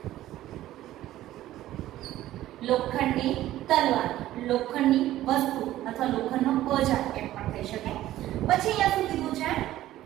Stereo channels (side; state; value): left; quieter; 14.3 dB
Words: લોખંડની તલવાર, લોખંડની વસ્તુ અથવા લોખંડનો ઓજાર એમ પણ થઈ શકે. પછી અહીંયા શું કીધું છે,